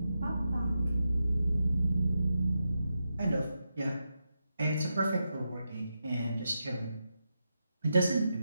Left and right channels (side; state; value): both; inverted; correlation -0.87